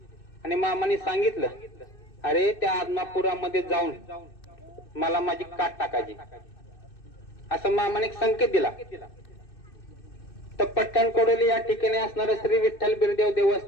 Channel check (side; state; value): right; late; 2.6 ms